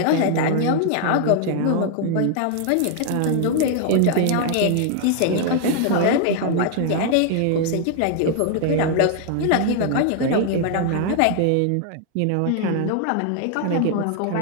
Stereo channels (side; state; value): both; different; correlation 0.00